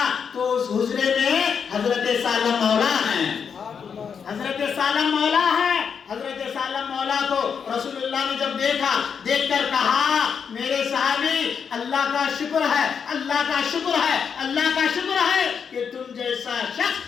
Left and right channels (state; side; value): quieter; right; 6.7 dB